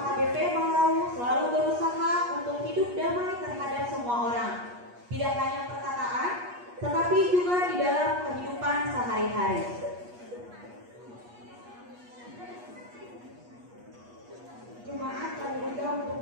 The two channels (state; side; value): late; left; 8.3 ms